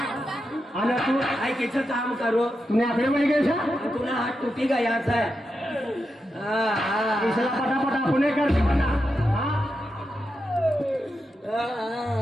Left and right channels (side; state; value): both; normal; correlation 0.87